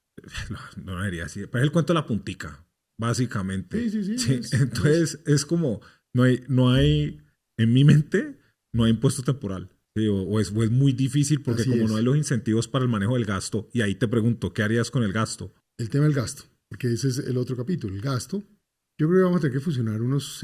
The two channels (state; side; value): identical; both; correlation 1.00